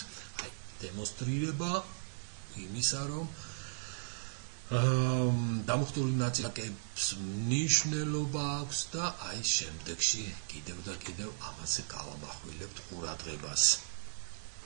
აი დემონსტრირება იმისა, რომ დამუხტული ნაწილაკების მნიშვნელობა აქვს და აი შემდეგში კიდევ და კიდევ ამაზე გავამახვილებთ ყურადღებას.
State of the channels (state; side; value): silent; left; digital silence